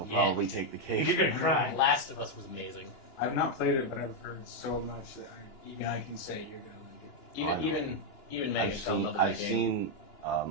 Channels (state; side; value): late; right; 2.9 ms